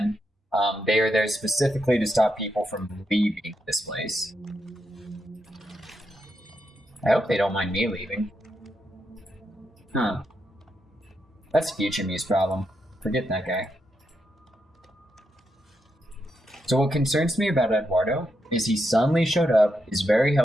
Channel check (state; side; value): normal; both; correlation 0.83